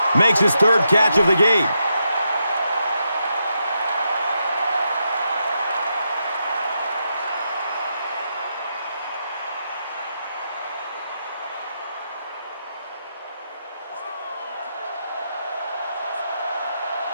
makes his third catch of the game.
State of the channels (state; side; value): inverted; both; correlation -0.83